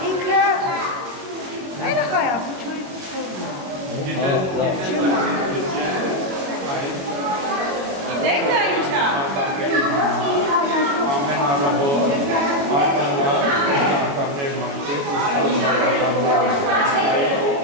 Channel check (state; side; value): late; left; 21 ms